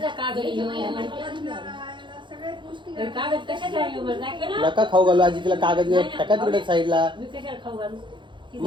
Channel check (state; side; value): late; left; 0.23 ms